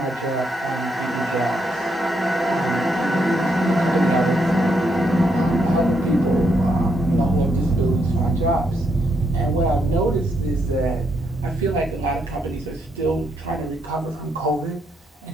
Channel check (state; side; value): normal; both; correlation 0.77